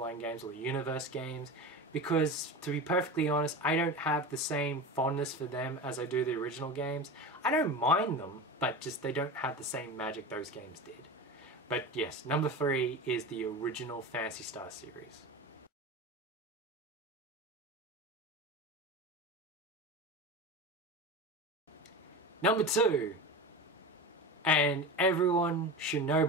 games or the Universe games because, to be perfectly honest, I don't have the same fondness for them as I do the original games. I don't mind them, but just they don't have the same magic those games did. But yes, number 3 is the original Phantasy Star series. Number 2, and everyone should know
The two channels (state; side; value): normal; both; correlation 0.27